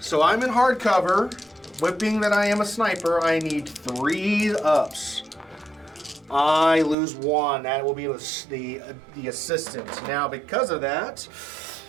I'm in hard cover. Whipping that I am a sniper, I need 3 ups. I lose 1. That will be the assistant. Now, because of that,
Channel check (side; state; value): left; drops out; at 7.0 s